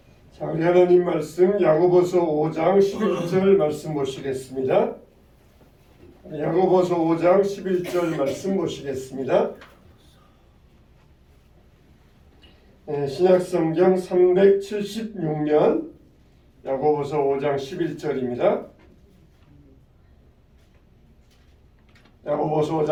자, 우리 하나님 말씀 야고보서 5장 11절 말씀 보시겠습니다. 야고보서 5장 11절 말씀 보시겠습니다. 신약성경 376면 야고보서 5장 11절입니다. 야고보서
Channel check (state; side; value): identical; both; correlation 1.00